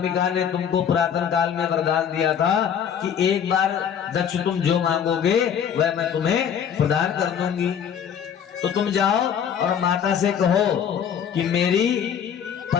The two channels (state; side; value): quieter; right; 8.2 dB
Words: ने तुमको पुरातन काल में वरदान दिया था कि एक बार दक्ष तुम जो मांगोगे वह मैं तुम्हें प्रदान कर दूंगी। तो तुम जाओ और माता से कहो कि मेरी